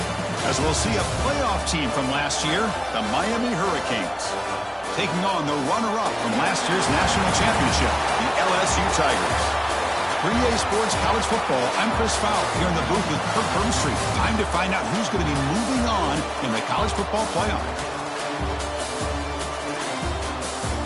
As we'll see a playoff team from last year, the Miami Hurricanes, taking on the runner-up from last year's national championship, the LSU Tigers. 3A Sports College Football, I'm Chris Fowler here in the booth with Kirk Burnstreet. Time to find out who's going to be moving on in the college football playoff.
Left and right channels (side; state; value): both; identical; correlation 1.00